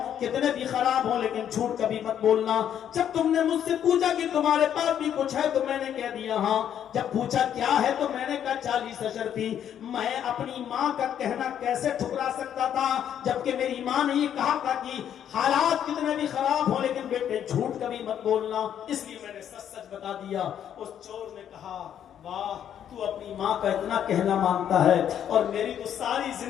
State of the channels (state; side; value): quieter; right; 9.6 dB